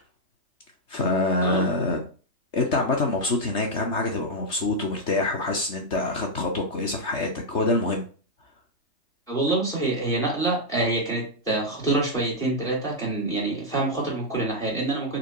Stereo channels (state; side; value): late; right; 3.3 ms